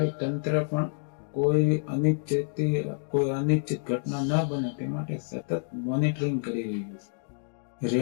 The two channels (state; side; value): silent; right; digital silence